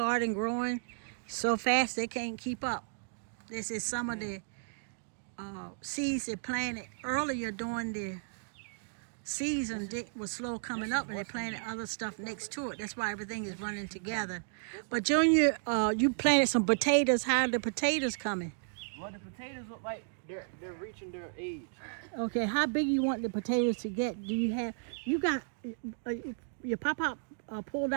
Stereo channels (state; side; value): silent; left; digital silence